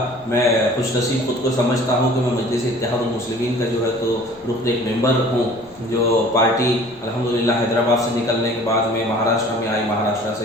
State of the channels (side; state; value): left; noise; rumble, 28 dB below the sound